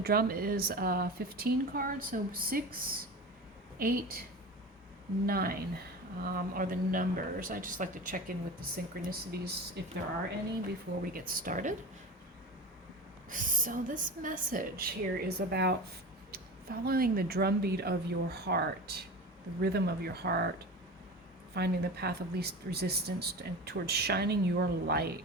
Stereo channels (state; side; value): normal; both; correlation 0.30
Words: drum is 15 cards, so 6, 8, 9 are the numbers. I just like to check in with the synchronicities, if there are any, before we get started. So this message here is about following the drumbeat of your heart, the rhythm of your heart, finding the path of least resistance and towards shining your